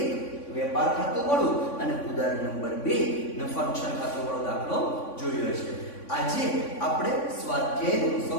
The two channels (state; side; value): late; right; 3.5 ms